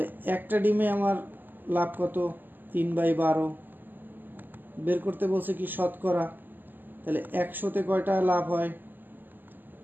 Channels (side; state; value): left; late; 0.090 ms